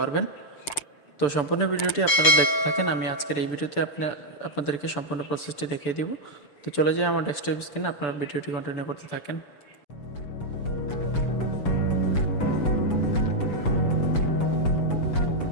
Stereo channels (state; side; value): late; right; 6.9 ms